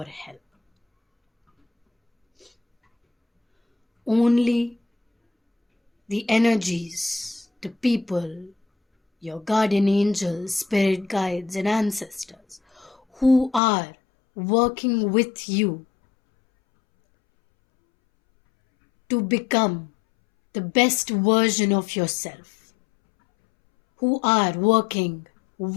help. Only the energies, the people, your guardian angels, spirit guides, and ancestors who are working with you to become the best version of yourself, who are working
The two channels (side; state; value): right; drops out; at 13.6 s